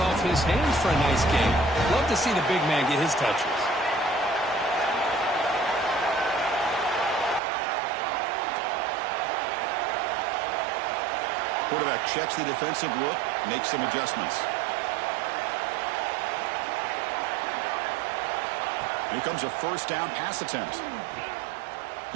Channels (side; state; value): left; drops out; at 7.4 s